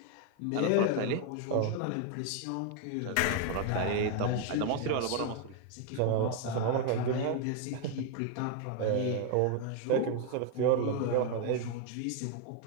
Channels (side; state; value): both; different; correlation 0.01